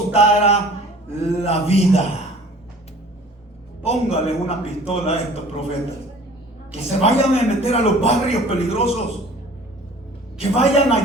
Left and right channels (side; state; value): both; normal; correlation 0.48